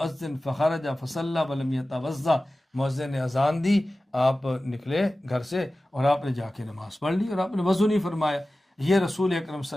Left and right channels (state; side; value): normal; both; correlation 0.96